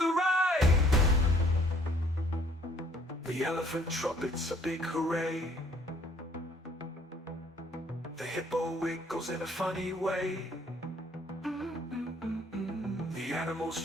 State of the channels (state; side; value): normal; both; correlation 0.61